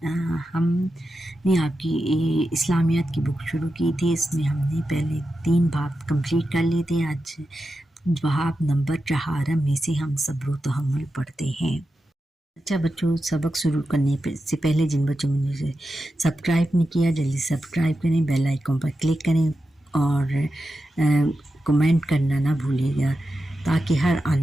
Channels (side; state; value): both; normal; correlation 0.90